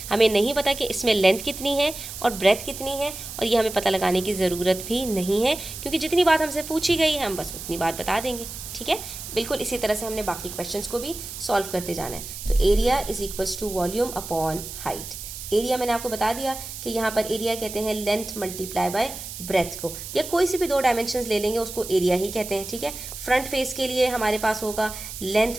हमें नहीं पता कि इसमें लेंथ कितनी है और ब्रेथ कितनी है, और ये हमें पता लगाने की ज़रूरत भी नहीं है, क्योंकि जितनी बात हमसे पूछी गई है हम बस उतनी बात बता देंगे। ठीक है, बिल्कुल इसी तरह से हमने बाकी क्वेश्चंस को भी सॉल्व करते जाना है। तो area is equals to volume upon height. Area मैंने आपको बता दिया कि यहाँ पर एरिया कहते हैं लेंथ मल्टीप्लाई बाय ब्रेथ को, या कोई से भी 2 डायमेंशंस ले लेंगे उसको एरिया ही कहते हैं। ठीक है, फ्रंट फेस के लिए हमारे पास होगा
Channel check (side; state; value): right; noise; hiss, 10 dB below the sound